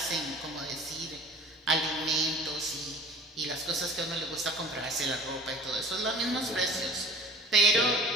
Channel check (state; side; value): normal; both; correlation 0.46